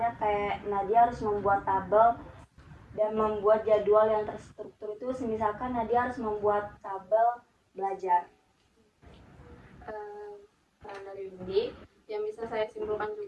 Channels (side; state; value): both; identical; correlation 1.00